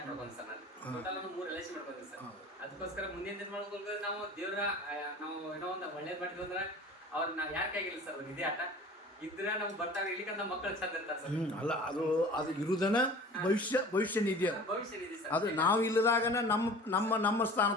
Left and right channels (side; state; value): both; normal; correlation 0.42